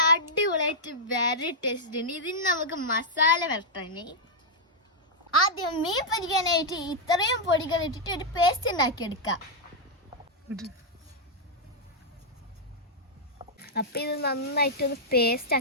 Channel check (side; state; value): both; normal; correlation -0.06